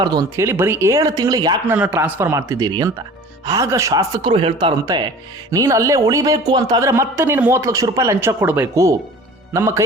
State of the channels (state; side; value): normal; both; correlation 0.43